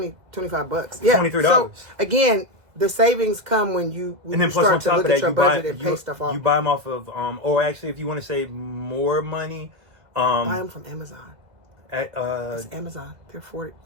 Yeah, $23. So again, the savings come when you start to look at your budget and pay stuff off. You buy them off of or actually, if you want to save more money, buy them from Amazon. It's Amazon.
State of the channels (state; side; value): late; left; 2.0 ms